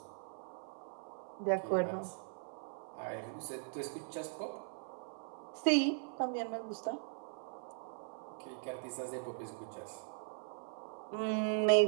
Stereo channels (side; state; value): left; silent; 51 dB below the other